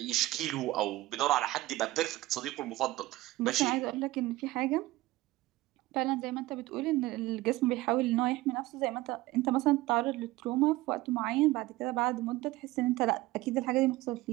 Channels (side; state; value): left; quieter; 18.3 dB